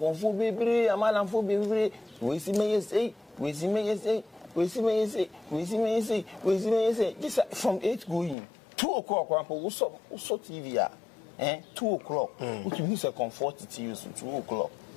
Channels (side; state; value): right; drops out; at 8.3 s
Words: bebre amalanfo bebre we si me say this from 8 going 2 o'clock we so TV 2 o'clock which means a comfort to use 2 o'clock.